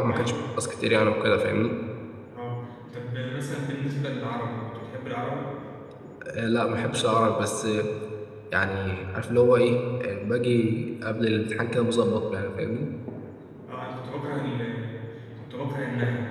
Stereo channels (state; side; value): identical; both; correlation 1.00